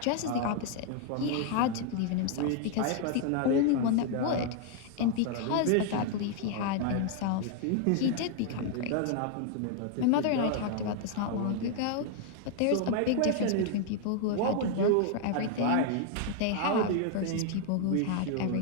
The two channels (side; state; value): both; different; correlation 0.00